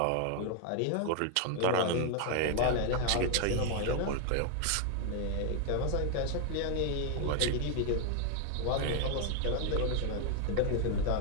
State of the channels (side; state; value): both; different; correlation 0.00